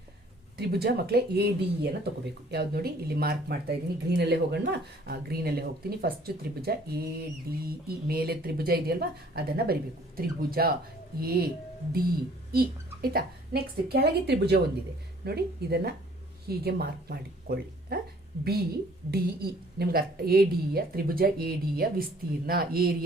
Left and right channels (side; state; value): both; normal; correlation 0.57